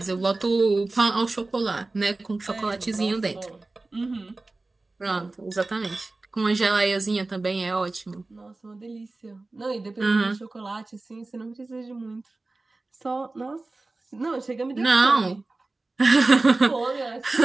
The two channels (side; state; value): left; quieter; 3.2 dB